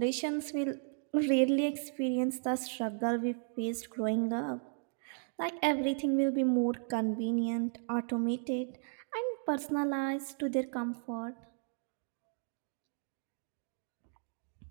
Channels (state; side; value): silent; left; digital silence